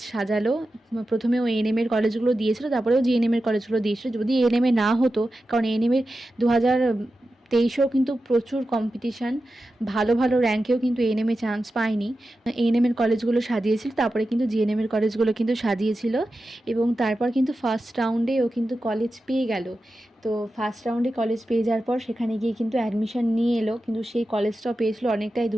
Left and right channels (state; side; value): normal; both; correlation 0.92